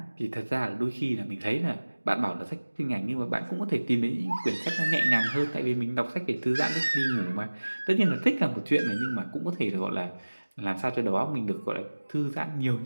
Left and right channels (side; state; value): both; inverted; correlation -1.00